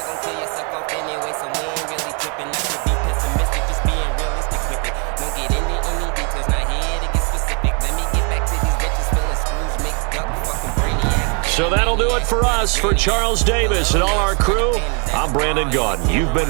gon' kill yourself off anyway, so we ain't really tripping. Not to be pessimistic, just being realistic with it. Don't get into any details, not here to get specific. Let me get back to these bitches feeling screws mixed up, fucking brainiac. So that'll do it for us. For Charles Davis and all our crew, I'm Brandon Gaudin. You've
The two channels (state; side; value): quieter; left; 36.6 dB